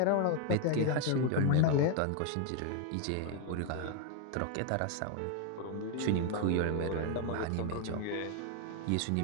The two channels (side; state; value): both; different; correlation 0.01